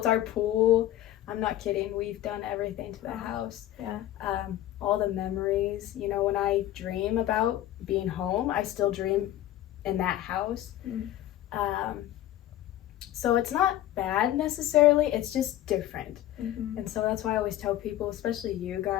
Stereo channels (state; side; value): quieter; right; 13.4 dB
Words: our pool. I'm not kidding. We've done everything to the house. All the memories, you know, when I dream about being home, I still dream in that house. So it's not bad necessarily, it's just different. And so that's why I always tell people, especially you